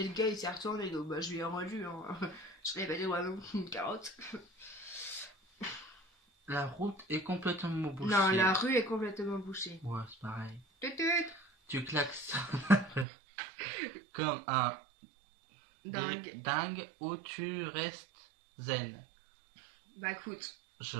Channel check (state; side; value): drops out; left; at 13.1 s